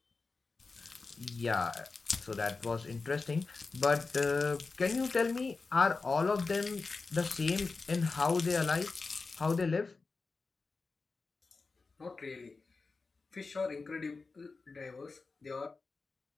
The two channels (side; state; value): right; quieter; 4.1 dB